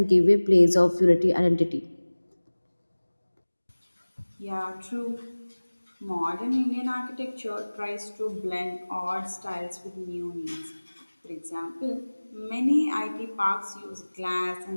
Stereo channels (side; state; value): both; inverted; correlation -1.00